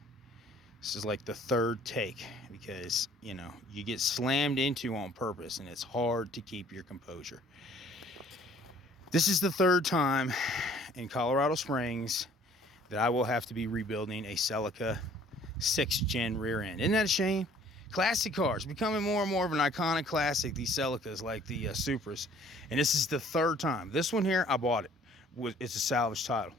This is like the third take because, you get slammed into on purpose and it's hard to keep your composure. This is the third time in Colorado Springs that I will have to be rebuilding a Celica 6th gen rear end. Isn't that a shame? Classic cars becoming more and more of an iconic classic, these Celicas like the Supras. And this is the third time. This one here, I bought it. It's a salvage title.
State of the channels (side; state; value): both; normal; correlation 0.56